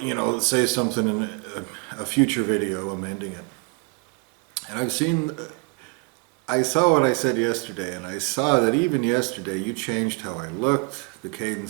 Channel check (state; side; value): quieter; left; 31.5 dB